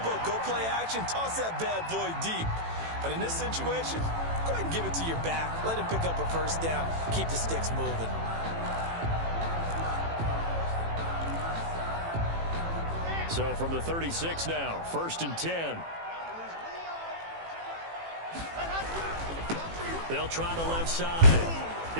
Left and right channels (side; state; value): left; late; 18 ms